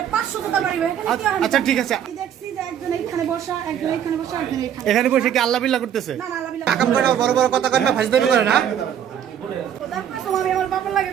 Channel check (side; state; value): left; quieter; 9.5 dB